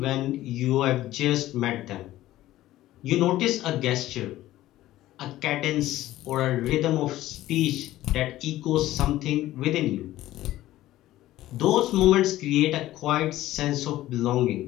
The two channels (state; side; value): quieter; right; 15.2 dB